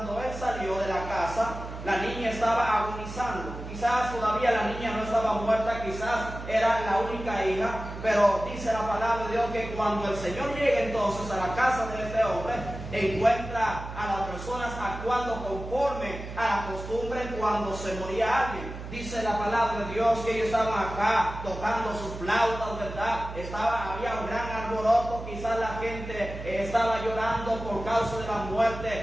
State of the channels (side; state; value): right; noise; hum, 10 dB below the sound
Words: él salió de la casa, la niña estaba agonizando. Quizás todavía la niña no estaba muerta, quizás era la única hija. Pero dice la palabra de Dios que cuando el Señor llega entonces a la casa de este hombre, encuentra a las personas actuando conforme a la costumbre cuando se moría alguien. Dice la palabra de Dios que ellos estaban acá tocando sus flautas, ¿verdad? Había un gran alboroto, quizás la gente estaba llorando por causa de la